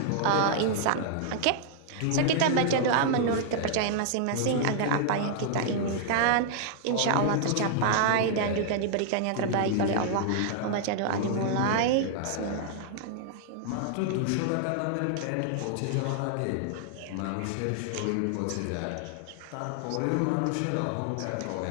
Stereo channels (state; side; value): different; both; correlation -0.01